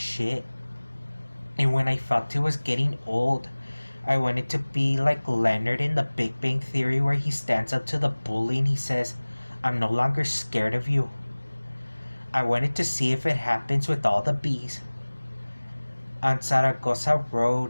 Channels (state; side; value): inverted; both; correlation -1.00